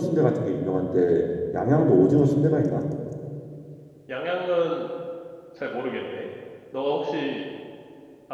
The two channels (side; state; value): both; identical; correlation 1.00